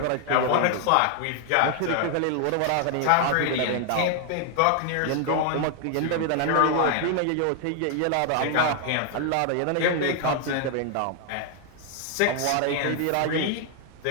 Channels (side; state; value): both; different; correlation 0.00